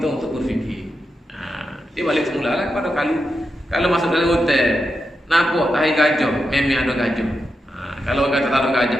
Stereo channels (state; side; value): normal; both; correlation 0.87